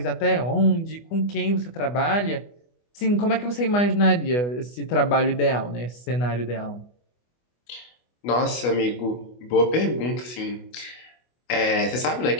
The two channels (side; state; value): right; late; 24 ms